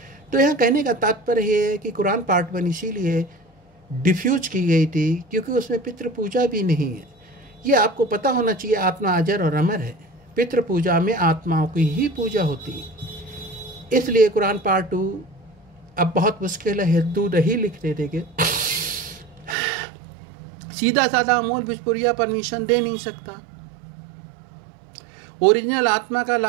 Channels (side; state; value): left; drops out; at 19.6 s